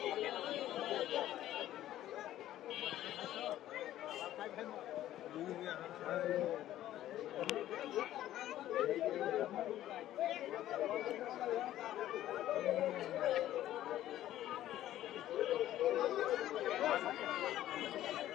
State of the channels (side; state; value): right; quieter; 13.2 dB